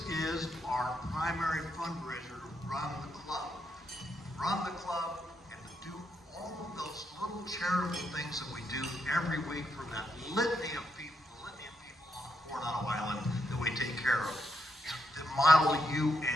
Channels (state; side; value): normal; both; correlation 0.80